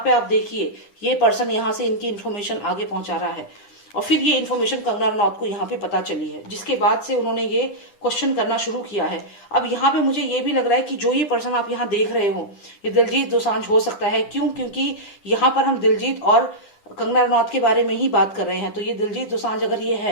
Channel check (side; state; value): right; late; 10 ms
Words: पे आप देखिए ये पर्सन यहाँ से इनकी इन्फॉर्मेशन आगे पहुंचा रहा है और फिर ये इन्फॉर्मेशन कंगना रनौत को यहाँ पे पता चली है, जिसके बाद से उन्होंने ये क्वेश्चन करना शुरू किया है। अब यहाँ पे मुझे ये भी लग रहा है कि जो ये पर्सन आप यहाँ देख रहे हो ये दिलजीत दोसांझ हो सकता है। क्यों, क्योंकि यहाँ पर हम दिलजीत और कंगना रनौत के बारे में ही बात कर रहे हैं। तो ये दिलजीत दोसांझ अगर ये